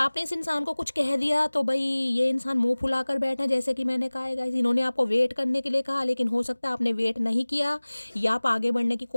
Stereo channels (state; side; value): inverted; both; correlation -1.00